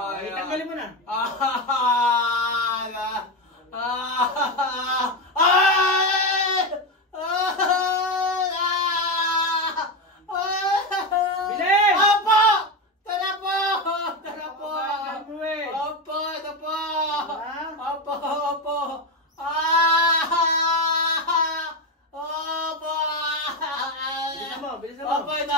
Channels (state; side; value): normal; both; correlation 0.14